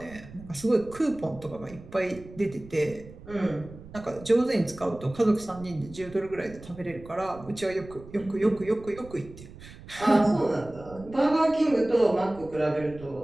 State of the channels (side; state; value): right; noise; rumble, 17 dB below the sound